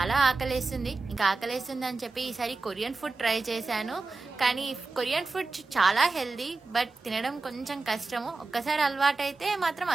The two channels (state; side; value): quieter; left; 3.6 dB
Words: ఆకలేస్తుంది. ఇంకా ఆకలేస్తుంది అని చెప్పి ఈసారి కొరియన్ ఫుడ్ ట్రై చేశాను. కానీ కొరియన్ ఫుడ్ చాలా హెల్దీ, బట్ తినడం కొంచెం కష్టము. ఒక్కసారి అలవాటు అయితే మాత్రం